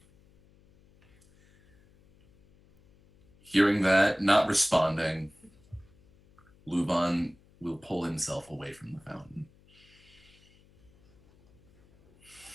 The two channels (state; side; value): noise; left; hum, 30 dB below the sound